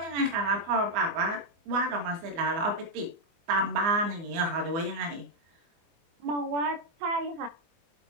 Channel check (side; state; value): left; late; 24 ms